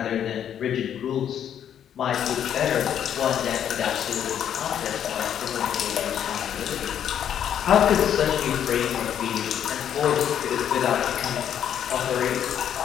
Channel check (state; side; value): quieter; right; 9.5 dB